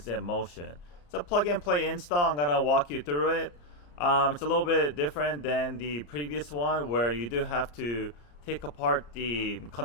in motion. It's a plug and play install. I'm going to walk you through it. It's a little bit different than the previous one where you do have to take apart the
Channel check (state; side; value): late; right; 34 ms